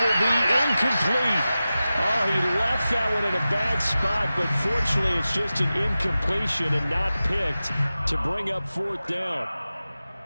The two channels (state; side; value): inverted; both; correlation -0.95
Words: be incomplete. Oh, he left that one in a bad spot, but fortunately it's just an incompletion and not picked to bring up fourth down.